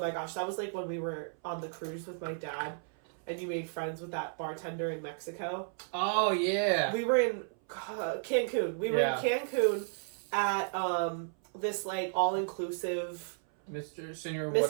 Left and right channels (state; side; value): silent; left; 55 dB below the other